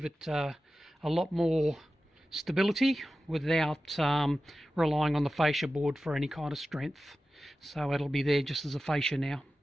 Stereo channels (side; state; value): both; normal; correlation 0.94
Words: it a lot more stability without relying on the fascia board for any kind of strength. So it'll be there just as a fascia now.